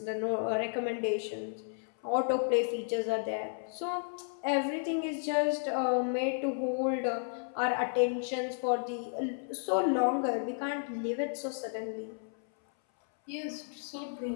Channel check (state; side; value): silent; right; 56 dB below the other